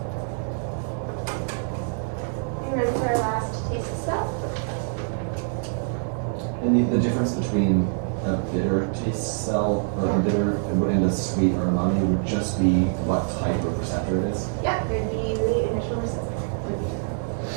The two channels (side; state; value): left; silent; 61 dB below the other